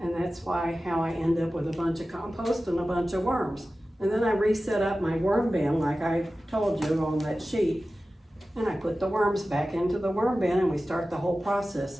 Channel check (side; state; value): both; normal; correlation 0.95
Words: And that's how I end up with a bunch of compost and a bunch of worms. And then I reset up my worm bin like I told you on that sheet, and I put the worms back into the worm bin, and we start the whole